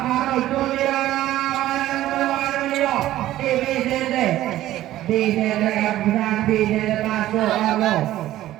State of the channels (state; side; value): quieter; left; 14.3 dB